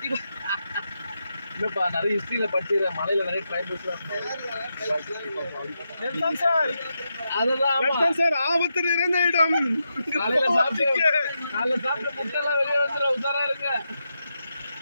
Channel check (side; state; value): both; inverted; correlation -0.86